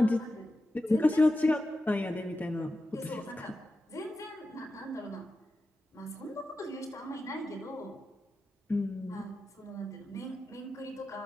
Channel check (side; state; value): both; normal; correlation 0.91